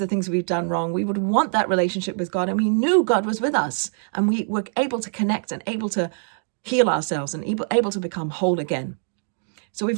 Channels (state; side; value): silent; left; 63 dB below the other